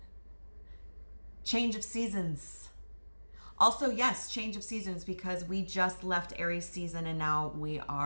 Change of seasons. Also, yes, change of seasons, because we just left Aries season and now we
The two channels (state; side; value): inverted; both; correlation -1.00